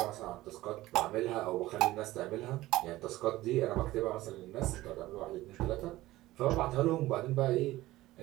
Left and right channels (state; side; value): quieter; left; 17.0 dB